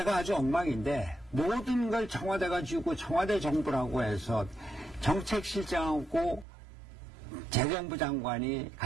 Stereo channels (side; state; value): left; drops out; at 6.5 s